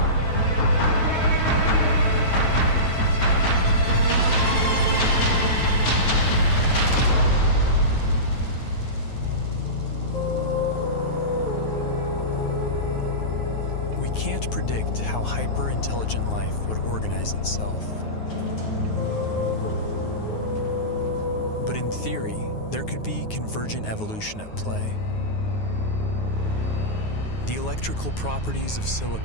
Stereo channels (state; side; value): late; right; 9.4 ms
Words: Can't predict how hyper-intelligent life would organize itself. But in theory, there could be convergent evolution at play. The electrical properties of